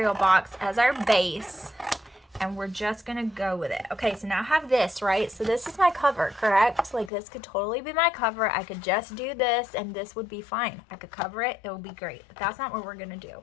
box as our base, and we're just going to go with it. Okay, so now I have this, right? So this is my cover, correct? Like, this could totally be my cover. I could just do this, and this would be fine. I could cover it. It would be great. But that's not what we're going to do.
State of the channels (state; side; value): drops out; right; at 7.1 s